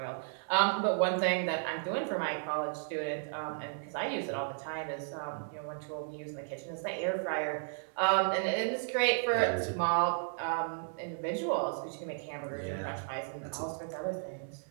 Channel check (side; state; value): left; silent; digital silence